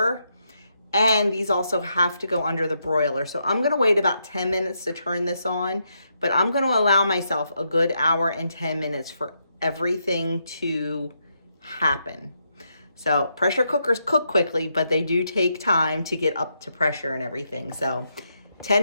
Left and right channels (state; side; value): inverted; both; correlation -0.80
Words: And these also have to go under the broiler. So I'm going to wait about 10 minutes to turn this on, but I'm going to allow myself a good hour and 10 minutes for everything to happen. So pressure cookers cook quickly, but they do take time to get up to pressure and everything. So